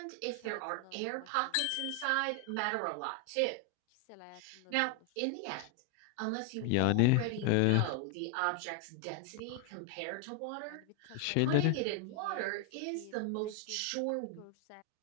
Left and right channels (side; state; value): both; different; correlation 0.00